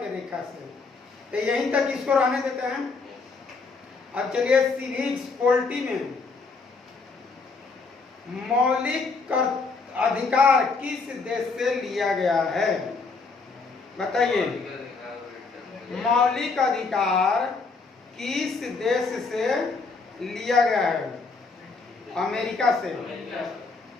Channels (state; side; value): quieter; right; 4.3 dB